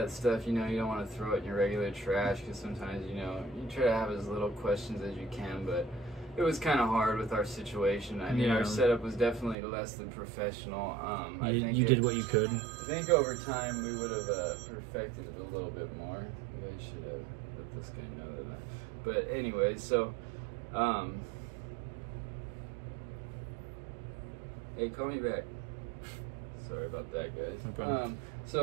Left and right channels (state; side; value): drops out; left; at 9.6 s